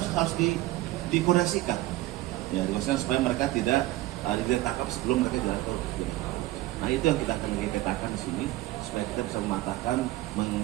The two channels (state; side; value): quieter; left; 17.2 dB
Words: dikoordinasikan, ya, supaya mereka tidak ditangkap sebelum mereka jatuh. Nah, itu yang kita akan petakan di sini supaya kita bisa mematahkan,